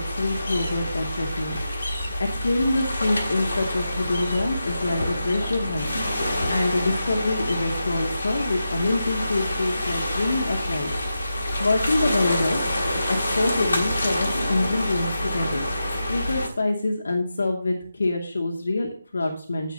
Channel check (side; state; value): both; inverted; correlation -0.89